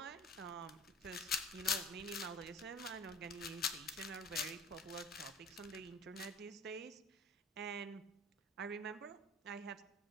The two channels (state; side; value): normal; both; correlation 0.42